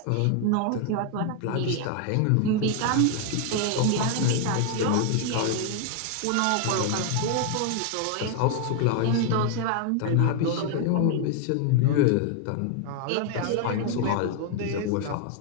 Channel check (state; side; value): different; both; correlation 0.00